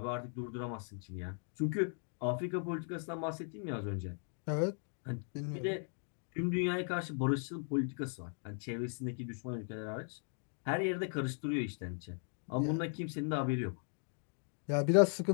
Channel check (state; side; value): silent; right; 53 dB below the other